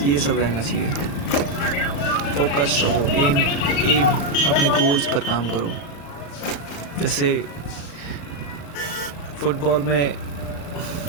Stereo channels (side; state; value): right; late; 35 ms